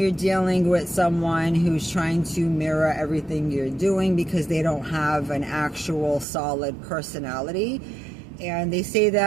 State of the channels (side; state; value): left; drops out; at 6.2 s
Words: dealing with someone who's trying to mirror everything you're doing, because they don't have an actual solid personality. And they say